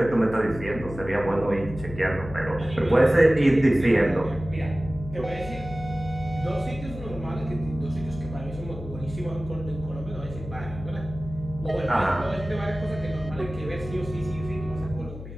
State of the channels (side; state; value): left; noise; hum, 12 dB below the sound